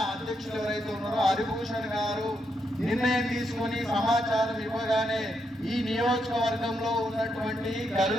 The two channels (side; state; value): both; normal; correlation 0.80